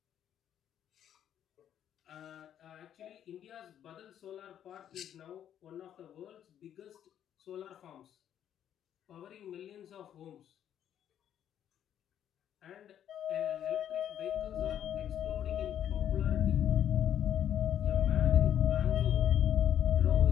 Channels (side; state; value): right; quieter; 10.1 dB